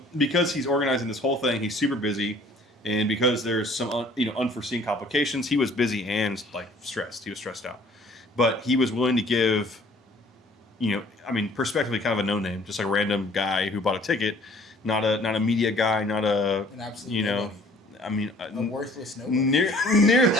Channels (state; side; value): normal; both; correlation 0.55